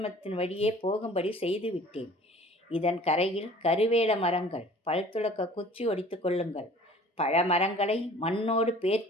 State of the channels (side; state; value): both; normal; correlation 0.48